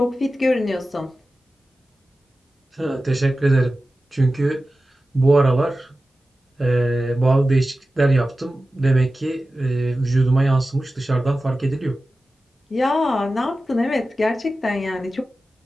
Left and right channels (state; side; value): normal; both; correlation 0.94